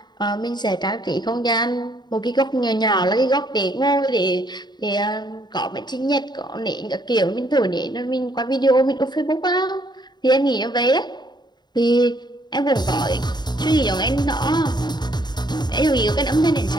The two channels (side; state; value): right; late; 0.21 ms